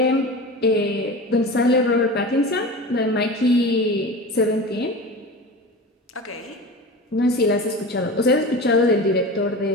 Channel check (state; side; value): normal; both; correlation 0.31